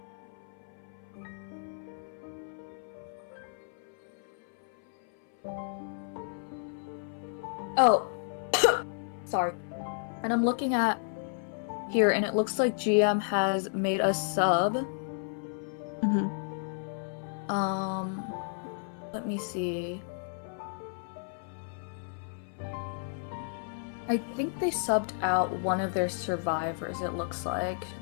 Oh, sorry. And I'm looking at here, and it looks like GM has made a sub. Let me see. I think they subbed out one of their survivors, it looks like.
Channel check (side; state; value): right; silent; 56 dB below the other